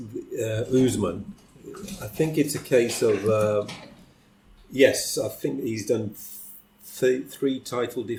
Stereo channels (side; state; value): both; identical; correlation 1.00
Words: I think it's a case of yes, I think he's done 3 title